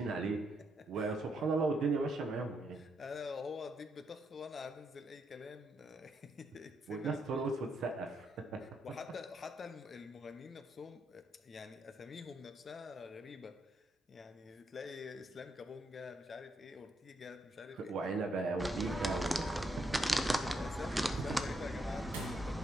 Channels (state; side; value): normal; both; correlation 0.78